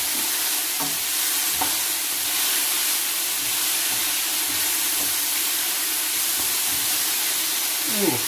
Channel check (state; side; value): identical; both; correlation 1.00